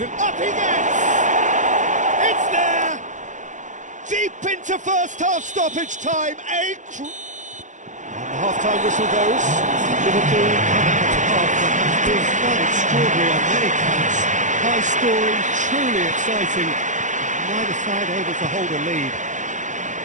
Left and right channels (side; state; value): left; late; 0.36 ms